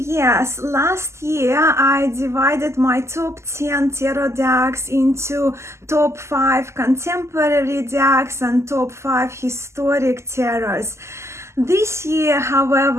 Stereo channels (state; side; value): late; left; 0.13 ms